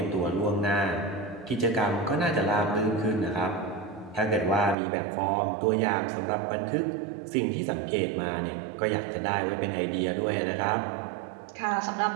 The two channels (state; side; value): drops out; left; at 4.8 s